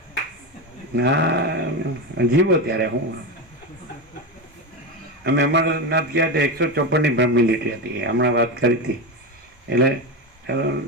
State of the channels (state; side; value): normal; both; correlation 0.17